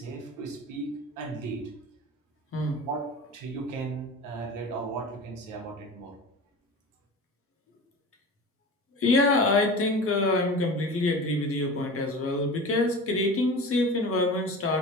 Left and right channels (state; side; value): normal; both; correlation 0.34